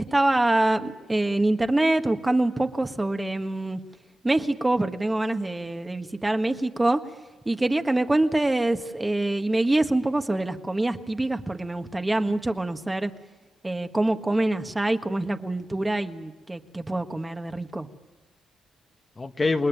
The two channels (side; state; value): both; normal; correlation 0.98